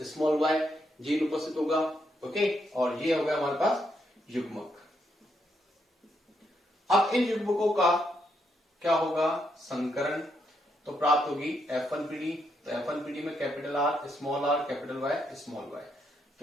small Y gene उपस्थित होगा। ओके, और ये होगा हमारे पास युग्मक। अब इन युग्मकों का क्या होगा? संकरण। तो प्राप्त होगी F1 पीढ़ी। तो F1 पीढ़ी में capital R, small R, capital Y, small Y.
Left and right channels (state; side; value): normal; both; correlation 0.78